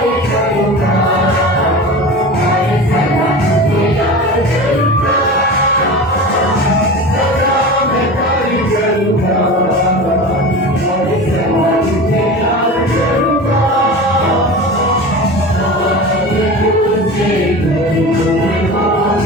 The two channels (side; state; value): both; normal; correlation 0.31